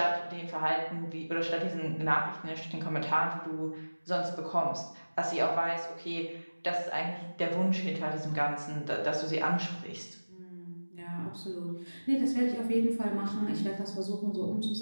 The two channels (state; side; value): inverted; both; correlation -1.00